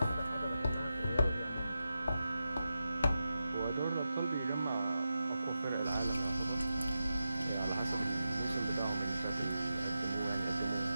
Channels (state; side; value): inverted; both; correlation -0.90